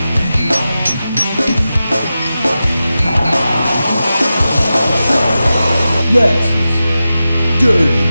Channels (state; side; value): inverted; both; correlation -0.93